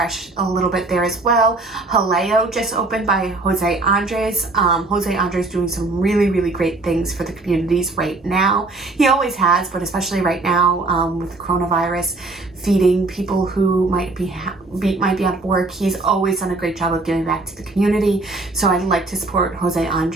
a little bit there as well. Jaleo just opened by Jose Andres. Jose Andres doing some really, really great things for the communities right now. He always has, but especially right now with the coronavirus, feeding people who might be out of work. He's always done a great job of giving back to the community, so I'd like to support Jose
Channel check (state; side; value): quieter; left; 3.2 dB